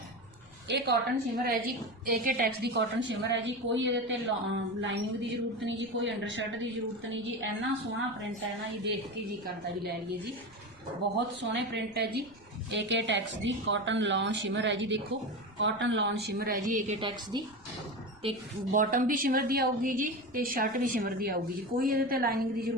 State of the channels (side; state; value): left; noise; rumble, 27 dB below the sound